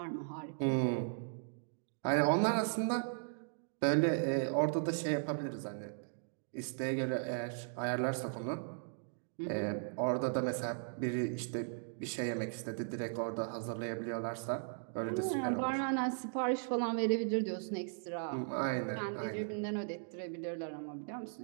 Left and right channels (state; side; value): silent; left; digital silence